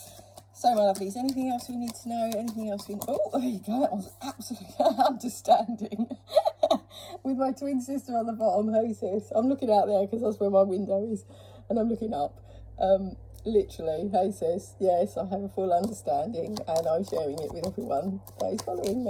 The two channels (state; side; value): identical; both; correlation 1.00